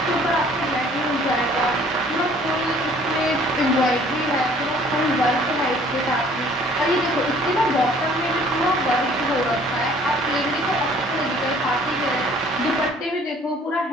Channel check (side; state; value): both; normal; correlation 0.55